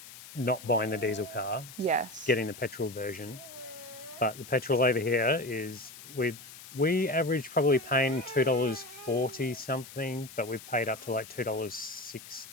not buying the diesel car. Yes. Getting the petrol version. But the petrol over here is... We average probably paying $2.40 something, but we've paid up to like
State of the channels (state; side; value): noise; left; hiss, 16 dB below the sound